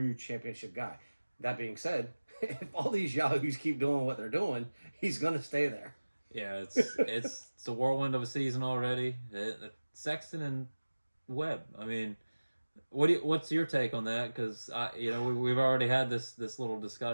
championship guy. That being said, if all these yahoos keep doing what they're doing, he's going to stay there. Yeah, it's a whirlwind of a season already. Sexton and Webb. I mean, what's your take on that? Because we've already had this little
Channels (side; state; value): both; inverted; correlation -1.00